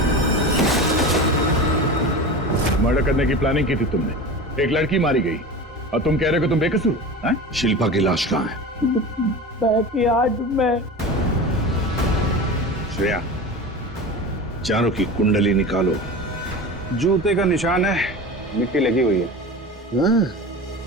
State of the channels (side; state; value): both; normal; correlation 0.31